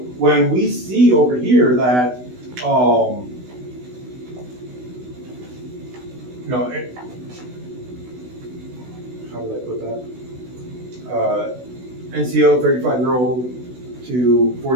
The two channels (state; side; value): late; left; 16 ms